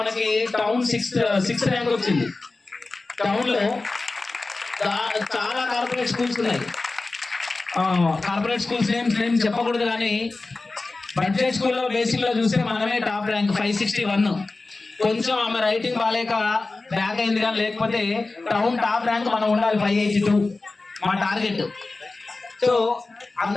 మనకి టౌన్ 6th ర్యాంక్ వచ్చింది. టౌన్ లో చాలా కార్పొరేట్ స్కూల్స్ ఉన్నాయి. కార్పొరేట్ స్కూల్స్ నేమ్ చెప్పకూడదు కానీ బడ్జెట్ స్కూల్లో బేసిక్ లో చూస్తే మనమే టాప్ ర్యాంక్ 561. కొంచెం ఆమె రైటింగ్ బాగాలేక బ్యాక్ అయింది, కానీ లేకపోతే టౌన్ టాప్ ర్యాంక్ మనం ఉండాలి 582 మా టార్గెట్. సో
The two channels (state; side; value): quieter; right; 3.4 dB